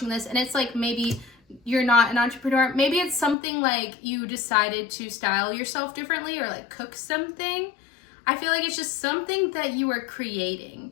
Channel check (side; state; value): right; drops out; at 3.4 s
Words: this and it's like maybe you're not an entrepreneur, maybe it's something like you decided to style yourself differently or like cook something. I feel like it's just something that you are